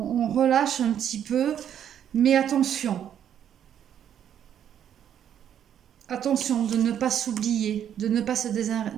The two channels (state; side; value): quieter; left; 9.6 dB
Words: relâche un petit peu, mais attention. Attention de ne pas s'oublier, de ne pas se